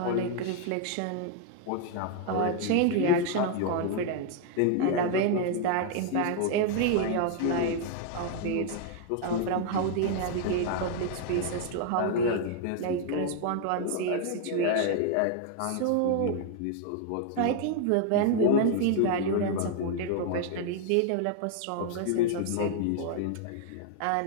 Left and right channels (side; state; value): both; different; correlation 0.00